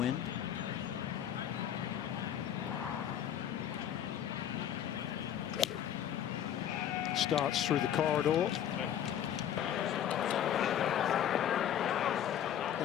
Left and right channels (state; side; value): quieter; right; 10.1 dB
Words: Starts through the corridor.